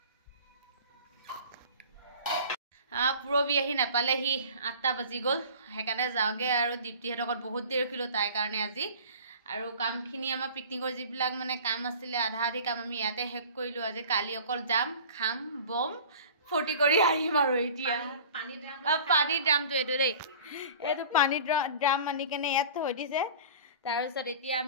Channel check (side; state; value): both; inverted; correlation -0.42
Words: পুৰবী আহি নাপালেহি 8টা বাজি গ'ল সেইকাৰণে যাওঁগে আৰু দীপ্তিহঁতৰ ঘৰত বহুত দেৰি ৰখিলোঁ তাইৰ কাৰণে আজি আৰু কামখিনি আমাৰ পিকনিকৰ যিবিলাক মানে কাম আছিলে আধা আধি কাম আমি ইয়াতে শেষ কৰিলোঁ আজি কালি অকল যাম খাম বম ফূৰ্তি কৰি আহিম আৰু এতিয়া পানী ড্ৰাম পানীৰ ড্ৰামটো এইটো দেই এইটো পানীৰ ড্ৰাম আনি কেনে ইয়াত থৈ দিছে তাৰপিছত এতিয়া